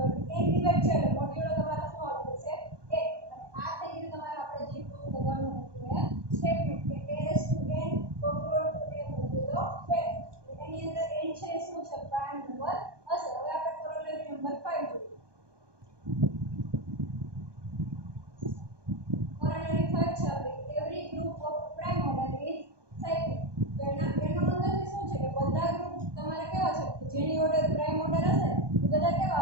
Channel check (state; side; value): late; left; 1.2 ms